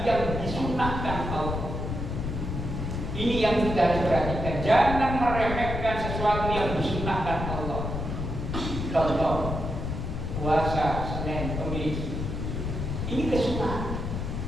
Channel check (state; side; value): noise; left; rumble, 3 dB below the sound